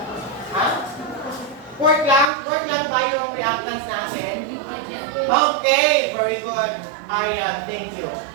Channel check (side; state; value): left; drops out; at 2.3 s